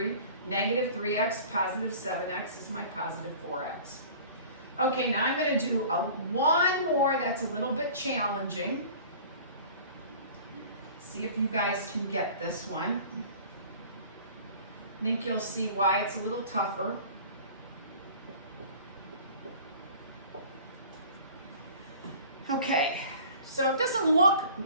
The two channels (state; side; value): inverted; both; correlation -0.45